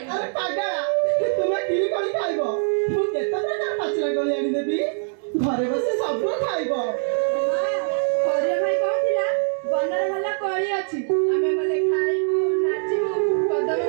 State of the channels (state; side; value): silent; left; 63 dB below the other